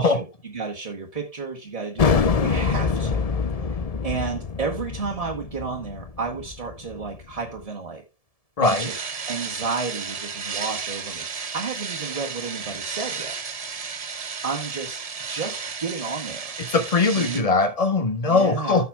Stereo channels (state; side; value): late; right; 1.7 ms